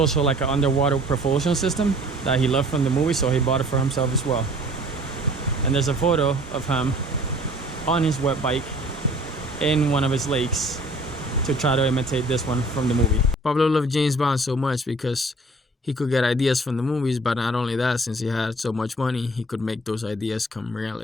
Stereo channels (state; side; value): normal; both; correlation 0.52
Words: like an underwater propulsion system that he loved from the movie, so he bought it for himself as well. And there's a photo of him on his wet bike in one of his lakes to try to imitate this one from the movie. Pablo loved James Bond so much because he could get ideas from the movies, but not only that, since he had so much money, he could make those ideas come